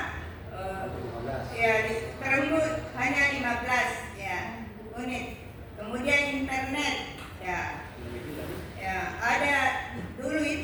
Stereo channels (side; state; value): both; identical; correlation 1.00